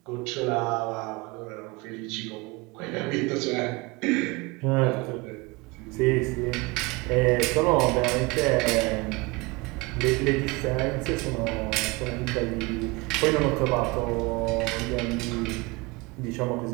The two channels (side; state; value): left; quieter; 24.8 dB